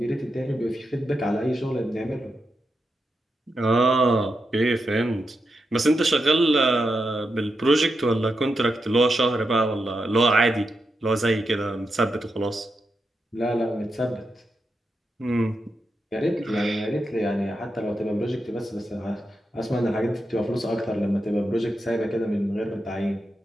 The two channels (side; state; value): both; normal; correlation 0.86